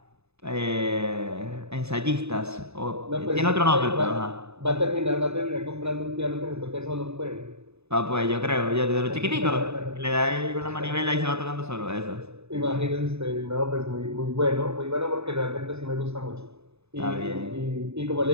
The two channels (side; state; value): left; late; 0.80 ms